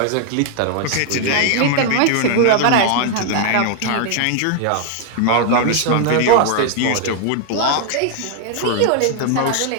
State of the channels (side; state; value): both; different; correlation 0.00